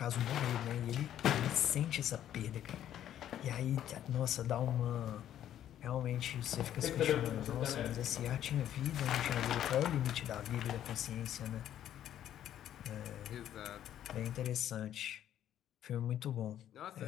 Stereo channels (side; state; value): right; quieter; 11.1 dB